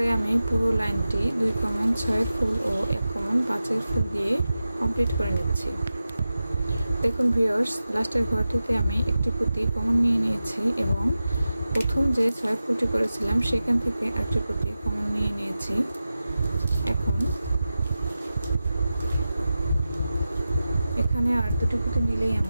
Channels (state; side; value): inverted; both; correlation -0.94